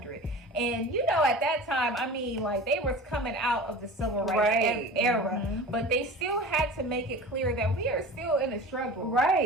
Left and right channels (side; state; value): both; normal; correlation 0.36